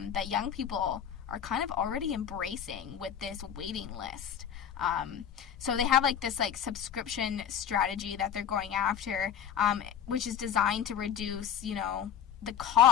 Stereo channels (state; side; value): quieter; right; 8.9 dB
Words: young people are kind of already embracing with this waiting list. So they have this subscription strategy that they're going after, which is designed to reduce, the